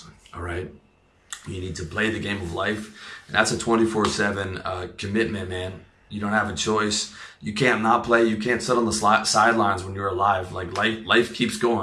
all right? You need to play the game of life, and that's a 24/7 commitment, man. You don't have a choice. You can't not play. You can't sit on the sidelines when you're alive. Like, life keeps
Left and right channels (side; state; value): both; identical; correlation 1.00